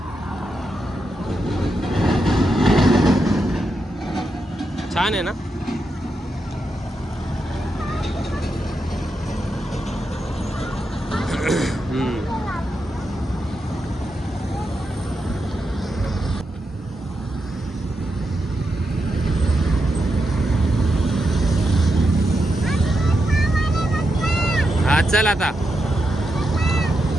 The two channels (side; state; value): both; normal; correlation 0.85